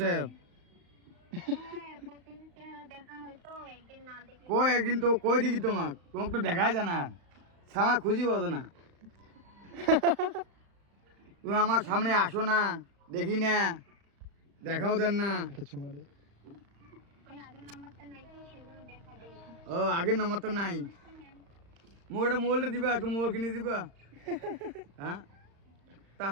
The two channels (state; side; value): late; left; 35 ms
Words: কই একদিন তো কই দেখি তোমাকে, তোমাকে তো দেখাই যায় না, সামা খুঁজি পাবো না। তুমি আমার সামনে আসো না, দেখি না, দেখাও দেন না। একটা চুমা দে। ও আগের নাম্বার তো নাই, মুখ একটা মোবাইলটা দিবা, একটা মোবাইল কিনে দিবা। হ্যাঁ,